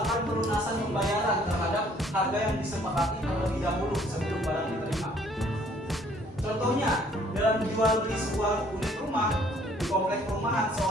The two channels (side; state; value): both; normal; correlation 0.60